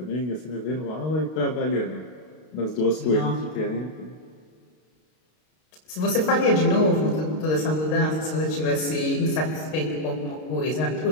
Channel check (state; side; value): late; right; 32 ms